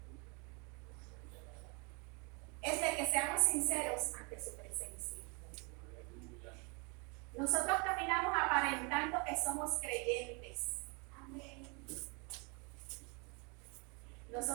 es de que seamos sinceros ante su presencia. Nosotros caminamos aparentando que somos creyentes. Amén.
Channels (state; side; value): quieter; left; 32.6 dB